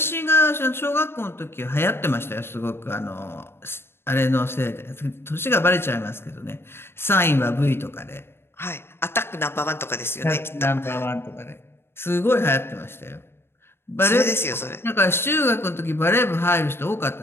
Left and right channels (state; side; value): late; right; 0.12 ms